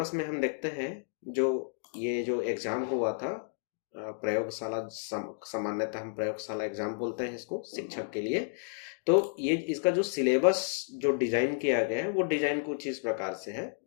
में हम देखते हैं जो ये जो एग्जाम हुआ था प्रयोगशाला, सामान्यतः हम प्रयोगशाला एग्जाम बोलते हैं इसको शिक्षक के लिए। तो ये इसका जो सिलेबस जो डिजाइन किया गया है, वो डिजाइन कुछ इस प्रकार से है,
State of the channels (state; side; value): silent; right; digital silence